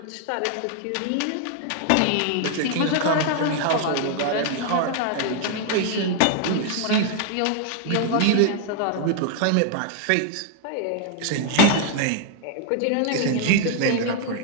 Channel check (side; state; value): both; different; correlation 0.00